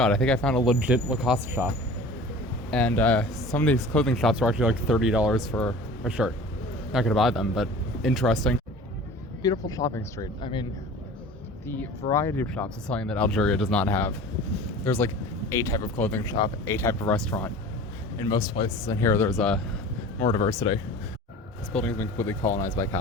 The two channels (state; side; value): normal; both; correlation 0.41